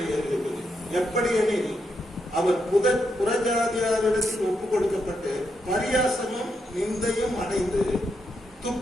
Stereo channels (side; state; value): both; normal; correlation 0.82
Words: எழுதி இருக்குது. எப்படி எனில் அவர் புறஜாதியாரிடத்தில் ஒப்பு கொடுக்கப்பட்டு பரியாசமும் நிந்தையும் அடைந்து